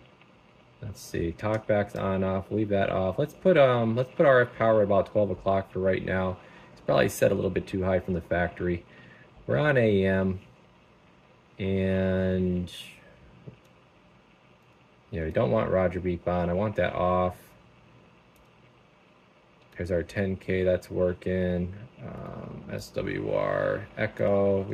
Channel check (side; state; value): both; identical; correlation 1.00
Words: Let's see, talkback's on, off, leave that off. Let's put RF power at about 12 o'clock for right now. It's probably set a little bit too high from the factory. We're on AM. And yeah, we don't want Roger beep on. I want that off. There's our 10K, that's working. SWR, echo,